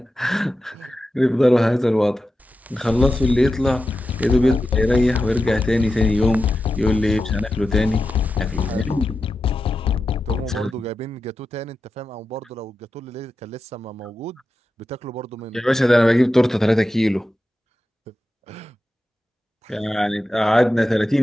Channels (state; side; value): normal; both; correlation 0.91